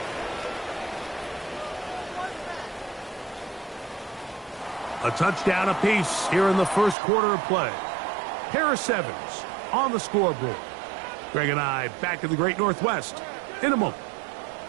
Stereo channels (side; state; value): left; drops out; at 7.0 s